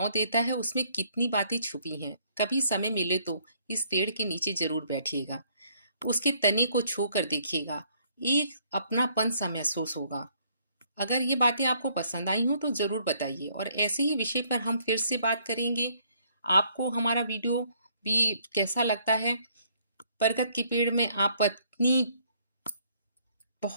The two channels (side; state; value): both; inverted; correlation -0.66